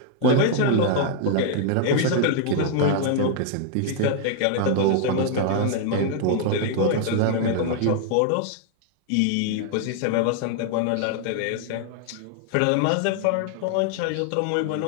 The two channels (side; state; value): both; different; correlation 0.00